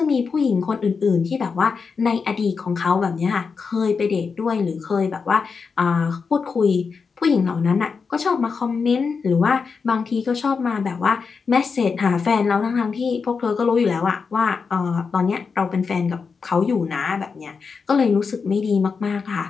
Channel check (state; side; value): quieter; right; 5.3 dB